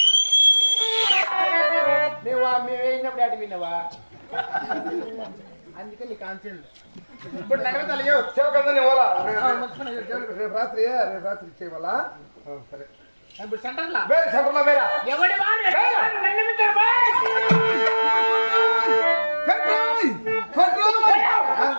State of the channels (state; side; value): inverted; both; correlation -1.00